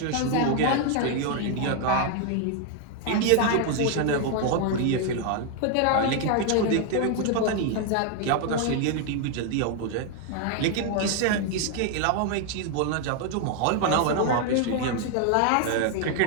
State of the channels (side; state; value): both; different; correlation 0.00